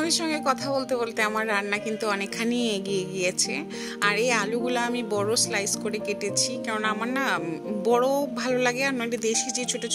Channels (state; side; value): identical; both; correlation 1.00